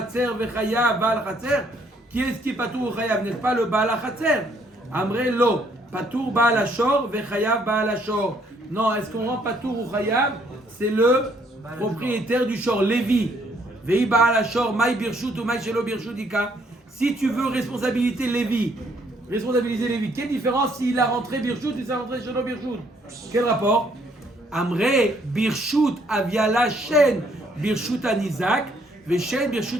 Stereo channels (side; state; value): both; normal; correlation 0.67